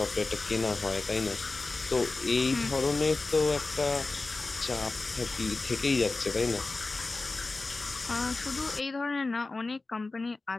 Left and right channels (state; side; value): quieter; right; 3.4 dB